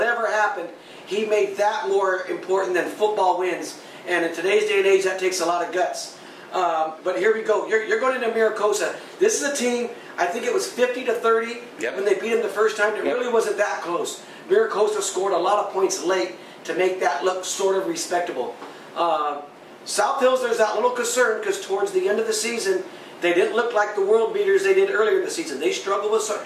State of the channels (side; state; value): both; identical; correlation 1.00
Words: happened, he made that more important than football wins. And in today's day and age, that takes a lot of guts. But here we go. You're going into Maricosta. This is a team, I think it was 50-30 when they beat them the first time. It really wasn't that close. Maricosta scored a lot of points late to make that look sort of respectable. South Hills, there's that little concern because towards the end of the season, they didn't look like the world beaters they did earlier in the season. They struggled with